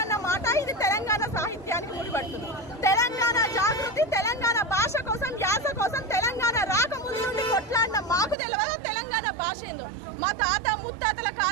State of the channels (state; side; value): drops out; left; at 8.3 s